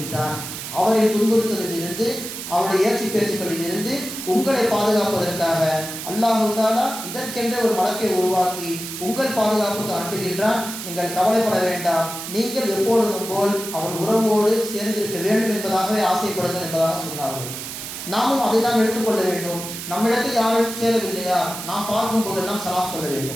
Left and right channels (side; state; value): right; noise; hiss, 8 dB below the sound